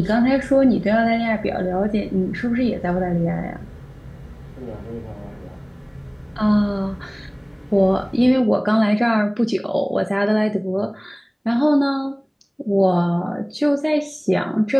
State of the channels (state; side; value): identical; both; correlation 1.00